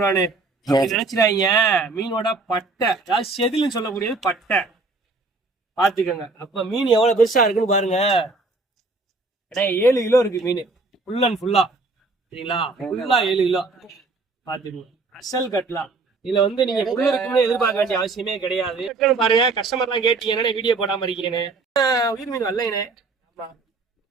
நினைச்சிடாங்க. மீனோட பட்டை, அதாவது செதில்னு சொல்லக்கூடியது பட்டை பாத்துக்கோங்க. அப்ப மீன் எவ்வளவு பெருசா இருக்குன்னு பாருங்க. 7 கிலோ இருக்கு மீன், ஃபுல் அண்ட் ஃபுல்லா. சரிங்களா? ஃபுல்லா 7 கிலோ பாத்துக்கோங்க. அசல் கட்டலாம். இதுல வந்து நீங்க உள்ள இருக்குன்னு எதிர்பார்க்க வேண்டிய அவசியமே கிடையாது. பாருங்க, கஸ்டமர் எல்லாம் கேட்டீங்கன்னா வீடியோ போடாம இருக்கீங்கன்னு. உயிர் மீன் வரலைனே. ஆமா,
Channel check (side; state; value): left; quieter; 3.6 dB